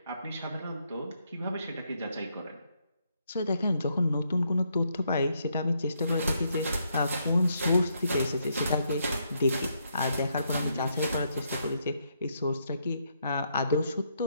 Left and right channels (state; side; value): inverted; both; correlation -0.76